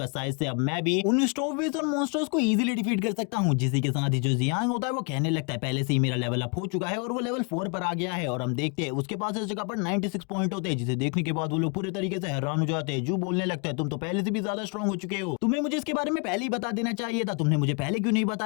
शायद से अब मैं भी उन स्टोवेज और मॉन्स्टर्स को इजीली डिफीट कर सकता हूँ। जिसी के साथ ही जो जियांग होता है वो कहने लगता है पहले से ही मेरा लेवल अप हो चुका है और वो लेवल 4 पर आ गया है। और हम देखते हैं उसके पास इस जगह पर 96 पॉइंट होते हैं, जिसे देखने के बाद वो लोग पूरे तरीके से हैरान हो जाते हैं। जू बोलने लगता है तुम तो पहले से भी ज्यादा स्ट्रॉन्ग हो चुके हो, तुम्हें मुझे इसके बारे में पहले ही बता देना चाहिए था, तुमने मुझे पहले क्यों नहीं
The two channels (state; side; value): quieter; right; 35.4 dB